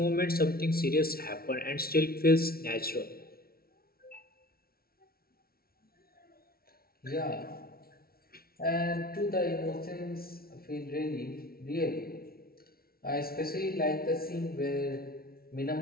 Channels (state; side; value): late; right; 0.44 ms